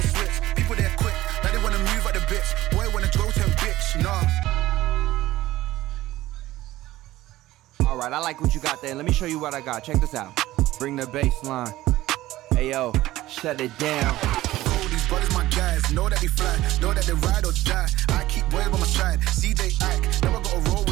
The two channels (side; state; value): left; quieter; 16.1 dB